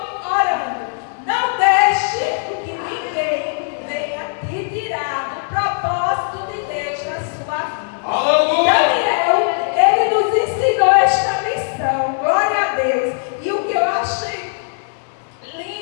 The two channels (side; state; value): right; silent; 67 dB below the other